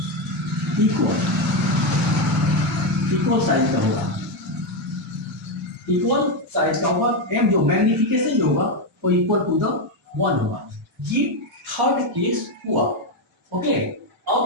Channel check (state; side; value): normal; both; correlation 0.07